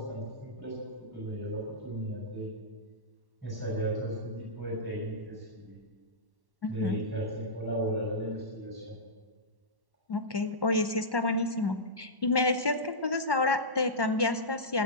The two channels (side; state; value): left; late; 1.1 ms